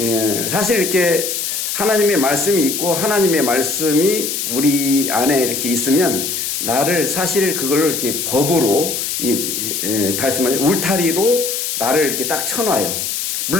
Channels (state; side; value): noise; left; hiss, 2 dB below the sound